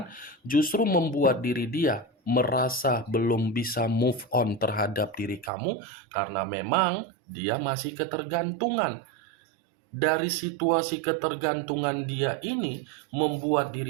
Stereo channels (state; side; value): drops out; left; at 5.5 s